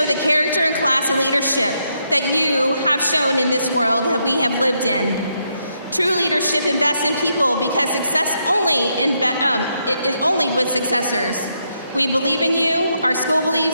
the character and class and leadership that you have shown in this world that we have lived in. True leadership invests in people because success is only with successors. We believe in you, our school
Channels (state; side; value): inverted; both; correlation -0.78